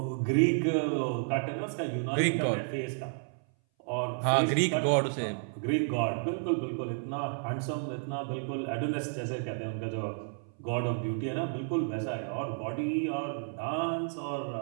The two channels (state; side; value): silent; left; 57 dB below the other